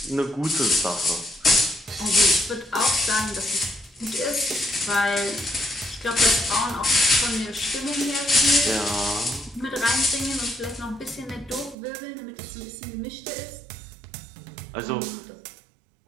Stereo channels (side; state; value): left; drops out; at 11.8 s